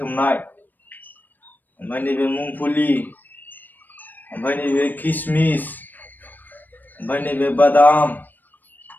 ओमफ्राय नैबे मुंगफुली, ओमफ्राय नैबे किसमिस, ओमफ्राय नैबे बादाम,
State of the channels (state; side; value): late; right; 0.089 ms